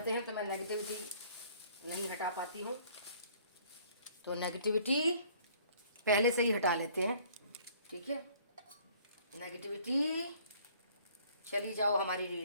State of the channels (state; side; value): inverted; both; correlation -0.57